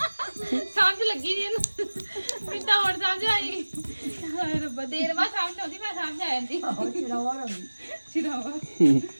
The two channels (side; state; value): both; inverted; correlation -1.00